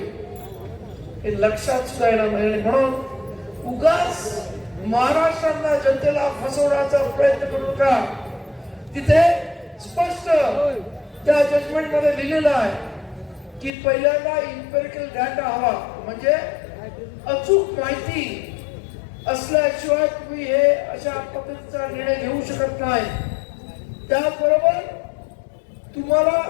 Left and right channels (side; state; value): right; drops out; at 13.7 s